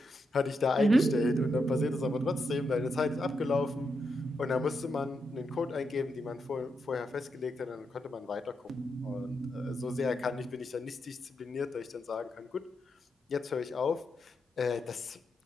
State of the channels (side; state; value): both; normal; correlation 0.84